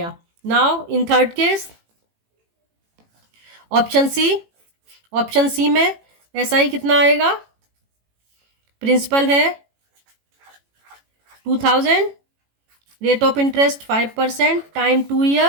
Now in third case option C में SI कितना आएगा, प्रिंसिपल है 2000, rate of interest 5%, time 2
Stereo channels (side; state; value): left; late; 18 ms